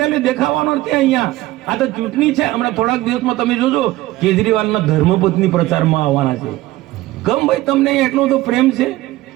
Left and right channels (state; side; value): quieter; left; 17.2 dB